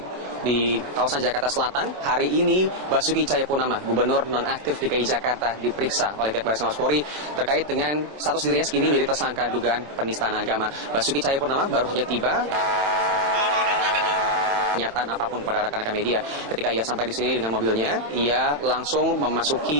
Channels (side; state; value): left; late; 27 ms